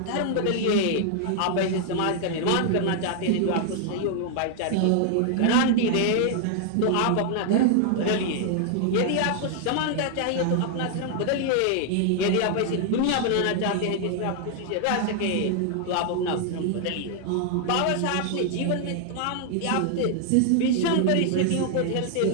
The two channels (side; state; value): both; different; correlation 0.00